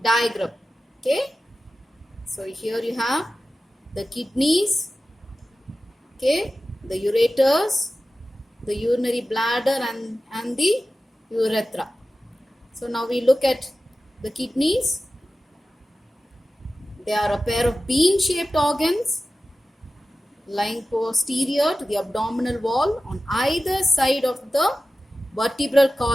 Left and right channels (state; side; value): normal; both; correlation 0.95